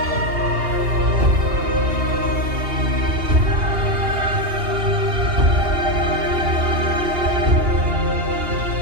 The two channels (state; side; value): late; left; 2.8 ms